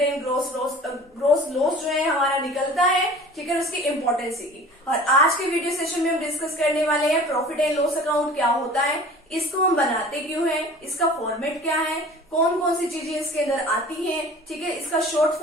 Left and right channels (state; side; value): normal; both; correlation 0.43